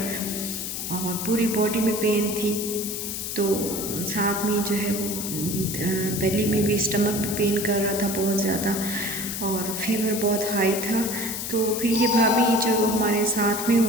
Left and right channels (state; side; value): noise; left; hiss, 5 dB below the sound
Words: और पूरी बॉडी में पेन थी। तो साथ में जो है वो बेली में भी, स्टमक भी पेन कर रहा था बहुत ज़्यादा और फीवर बहुत हाई था। तो फिर ये भाभी जो हमारे साथ में